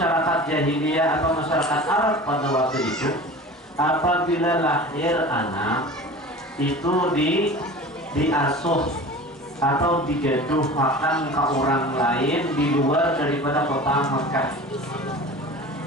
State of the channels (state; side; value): normal; both; correlation 0.37